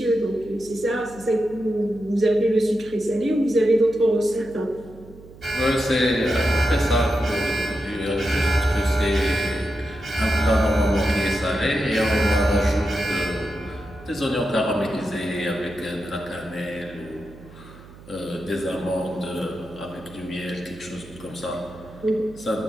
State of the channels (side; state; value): right; noise; hum, 20 dB below the sound